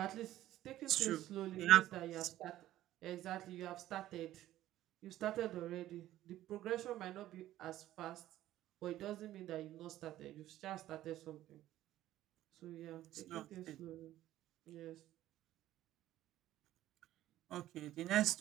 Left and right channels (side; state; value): left; quieter; 14.0 dB